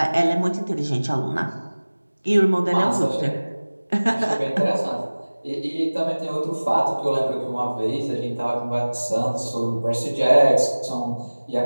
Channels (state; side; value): inverted; both; correlation -1.00